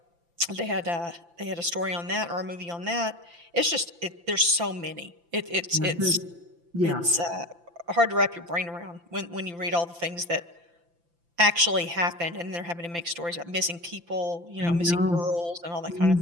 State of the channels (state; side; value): late; left; 5.9 ms